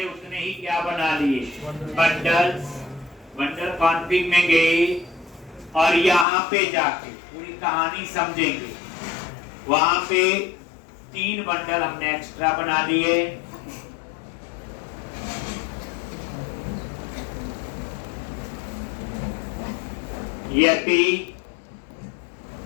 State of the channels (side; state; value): right; drops out; at 6.2 s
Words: उसने ही क्या बना लिए बंडल्स। बंडल कॉन्फिग में गए और यहाँ पे जाके पूरी कहानी समझेंगे। वहां पे 3 बंडल हमने एक्स्ट्रा बना लिए। यति,